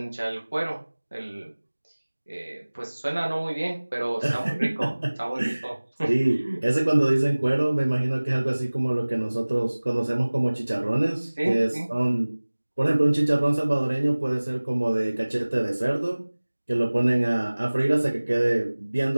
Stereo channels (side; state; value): both; inverted; correlation -1.00